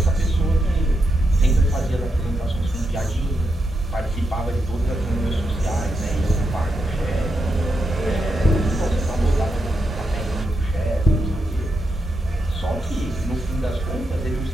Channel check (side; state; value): both; normal; correlation 0.84